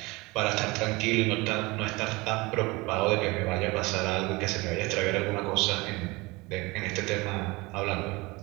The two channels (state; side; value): quieter; left; 23.6 dB